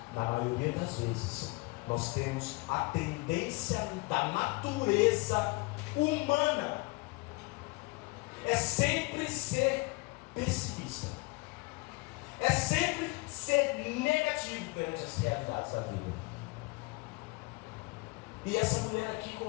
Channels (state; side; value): quieter; right; 25.5 dB